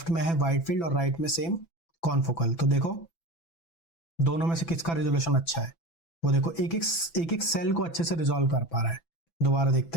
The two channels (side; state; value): right; late; 6.0 ms